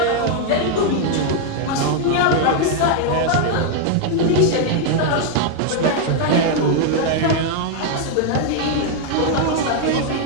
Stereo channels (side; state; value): both; different; correlation 0.00